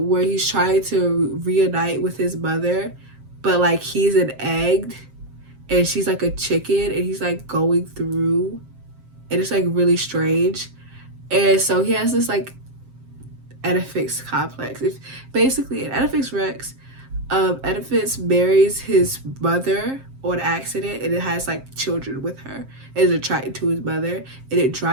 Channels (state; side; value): late; left; 7.6 ms